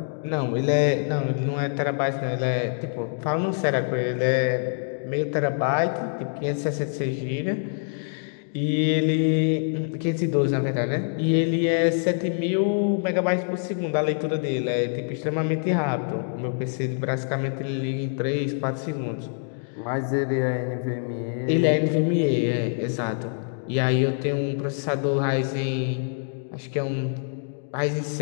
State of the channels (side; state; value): right; silent; digital silence